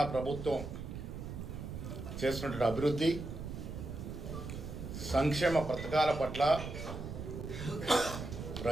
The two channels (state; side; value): noise; right; rumble, 8 dB below the sound